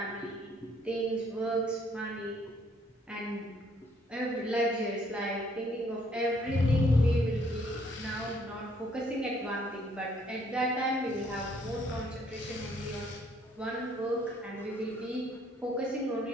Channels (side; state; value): both; normal; correlation 0.65